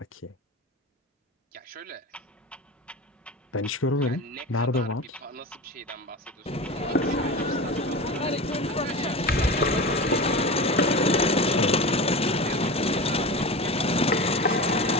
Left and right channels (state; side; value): normal; both; correlation 0.29